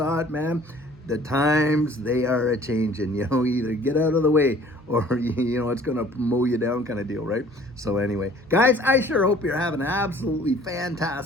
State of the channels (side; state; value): both; normal; correlation 0.52